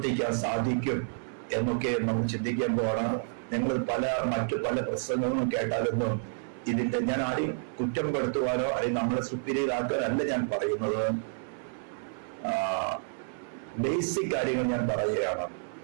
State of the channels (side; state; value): left; silent; 58 dB below the other